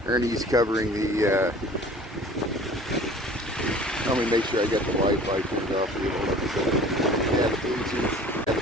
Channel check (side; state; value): both; normal; correlation 0.46